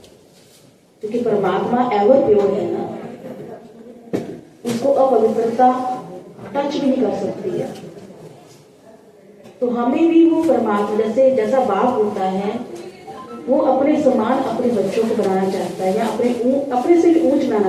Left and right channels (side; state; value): both; identical; correlation 1.00